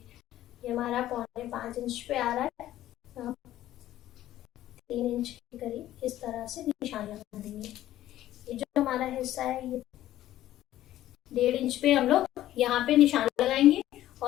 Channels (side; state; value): right; quieter; 13.6 dB